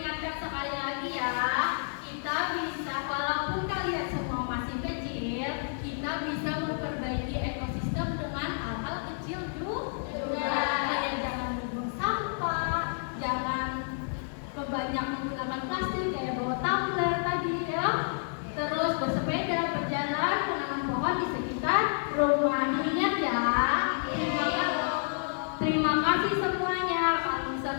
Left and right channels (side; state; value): right; silent; 58 dB below the other